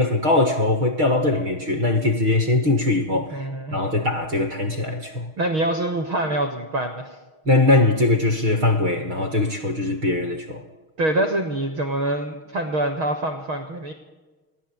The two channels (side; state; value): left; late; 6.4 ms